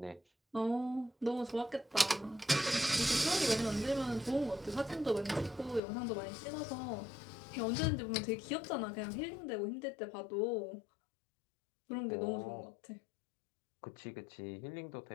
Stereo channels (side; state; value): right; drops out; at 5.8 s